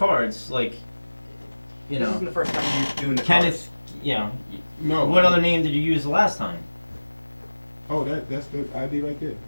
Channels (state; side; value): inverted; both; correlation -1.00